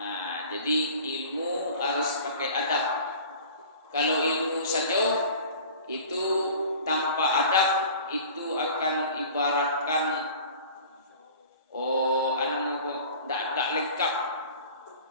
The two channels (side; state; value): both; inverted; correlation -0.43